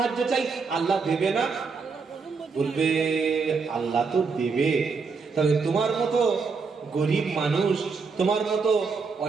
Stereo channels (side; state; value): left; quieter; 4.9 dB